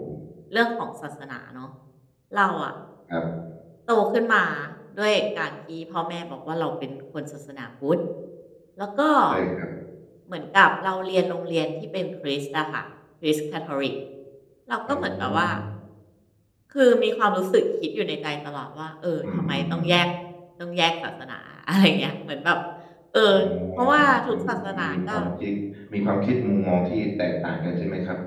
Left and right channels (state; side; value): identical; both; correlation 1.00